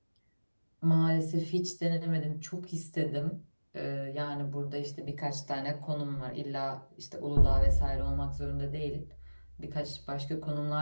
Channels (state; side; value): inverted; both; correlation -1.00